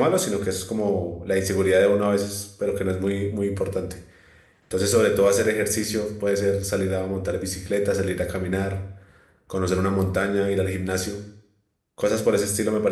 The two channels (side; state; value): both; identical; correlation 1.00